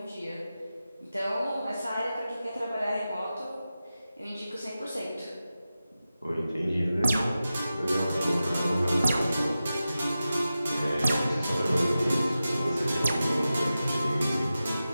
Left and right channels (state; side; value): inverted; both; correlation -0.93